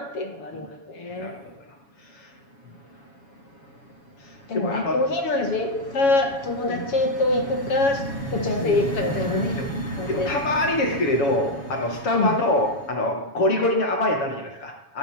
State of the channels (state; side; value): late; right; 7.2 ms